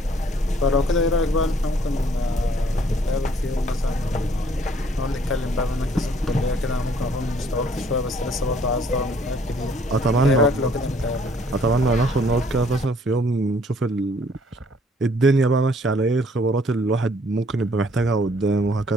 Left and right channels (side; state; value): both; normal; correlation 0.62